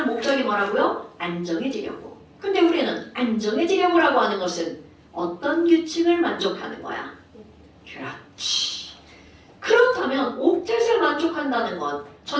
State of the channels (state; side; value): identical; both; correlation 1.00